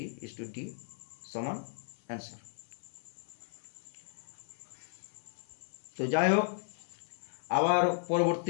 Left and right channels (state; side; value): silent; right; 54 dB below the other